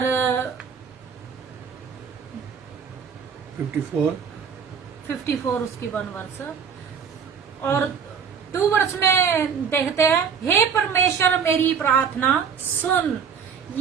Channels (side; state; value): left; quieter; 6.7 dB